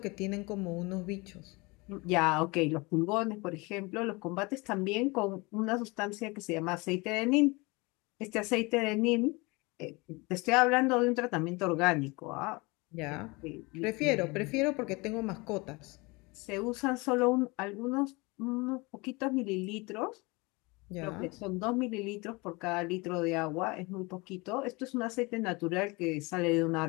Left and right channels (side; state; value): right; quieter; 25.8 dB